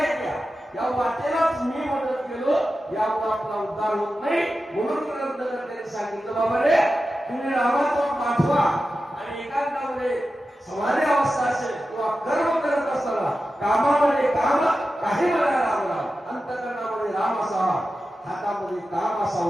येत्या. या वाटेलाच मी मदत केलो यामुळे आपला उद्धार होत नाही. म्हणून ग्रंथकर्त्याने सांगितलं बाबा रे तुम्ही रामाचा पाठवा आणि एकांतामध्ये समाधी अवस्था असेल किंवा कर्म करत असताना कामामध्ये काम काही मला राम राम, अंतकरणामध्ये राम असावा, हातामध्ये काम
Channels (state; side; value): normal; both; correlation 0.92